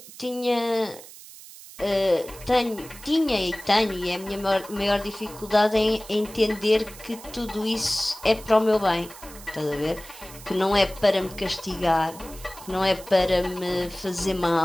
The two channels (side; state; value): right; noise; hiss, 17 dB below the sound